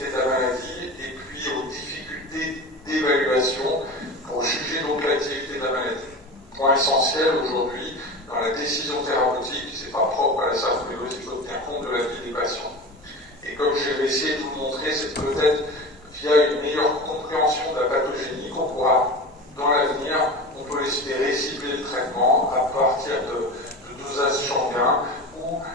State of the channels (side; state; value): both; normal; correlation 0.30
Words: de la maladie et puis aux difficultés d'évaluation pour juger donc l'activité de la maladie. Point essentiel aujourd'hui dans la décision thérapeutique, c'est pas propre à la sarcoïdose, il faut tenir compte de la vie des patients. Et comme je vais essayer de vous le montrer, c'est peut-être via une meilleure compréhension de la pathogénie qu'on pourra, dans l'avenir, on peut espérer cibler le traitement à partir de dosages sanguins ou